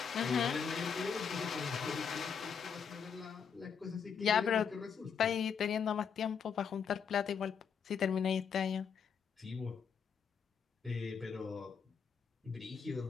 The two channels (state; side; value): quieter; right; 6.7 dB